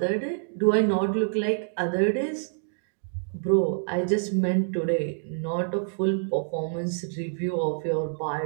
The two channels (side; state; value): left; silent; digital silence